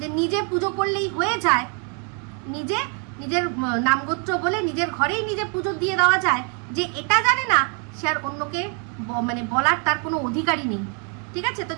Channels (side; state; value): left; quieter; 38.7 dB